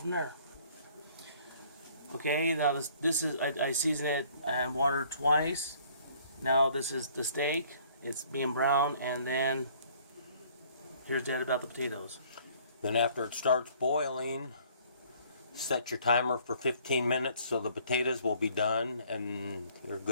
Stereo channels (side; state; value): both; inverted; correlation -0.58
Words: there. Okay, now this is, I season it and water twice. Now this is the steak. It's being brown, and then here's Dad about the potatoes. Then after it starts boiling, set your timer for 15 minutes so the potatoes will be done and you're